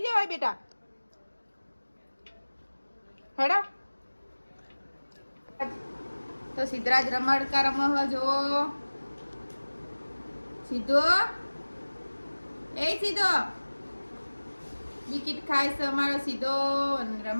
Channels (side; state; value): both; inverted; correlation -1.00